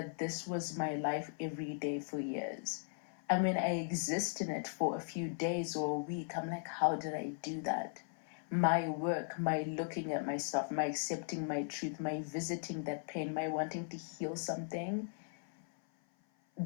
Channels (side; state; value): right; silent; 52 dB below the other